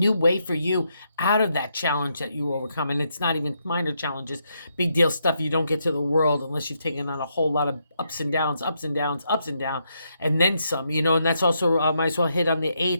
way for you out of that challenge that you overcome. And it's not even minor challenges, big deal stuff you don't get to the world unless you've taken on a whole lot of ups and downs, and then some, and that's also, might as well hit on the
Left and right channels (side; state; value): both; inverted; correlation -0.79